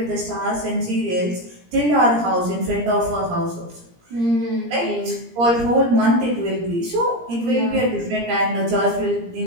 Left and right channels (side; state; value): left; late; 17 ms